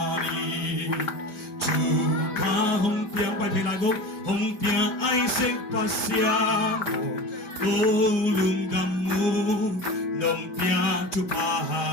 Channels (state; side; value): late; right; 5.0 ms